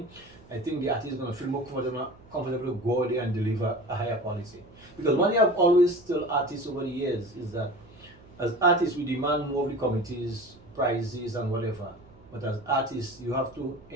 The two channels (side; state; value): right; noise; hum, 24 dB below the sound